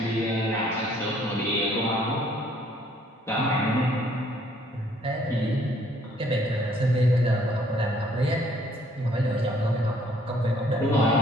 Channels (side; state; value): both; normal; correlation 0.63